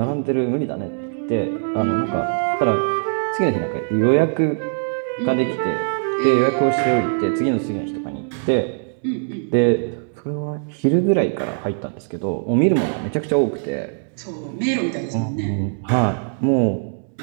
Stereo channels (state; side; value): silent; left; 64 dB below the other